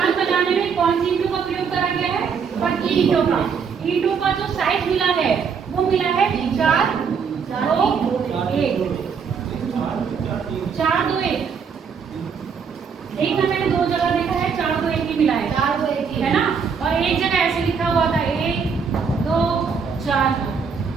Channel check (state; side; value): quieter; left; 6.2 dB